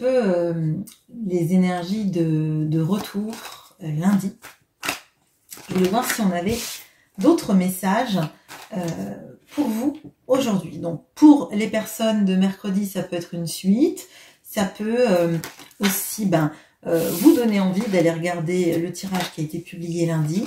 les énergies de retour lundi, je voulais voir si on avait d'autres messages pour vous aujourd'hui. Donc pour les personnes de mercredi, ça peut être une suite, ça peut aussi vous donner envie d'aller regarder le tirage qui a été publié lundi.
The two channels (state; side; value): identical; both; correlation 1.00